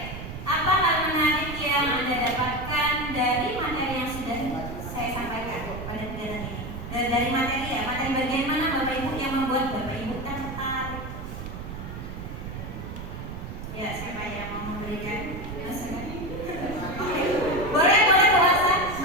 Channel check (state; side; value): noise; right; rumble, 9 dB below the sound